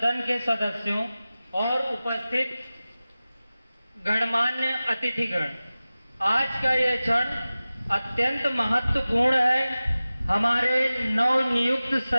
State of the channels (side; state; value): both; inverted; correlation -0.97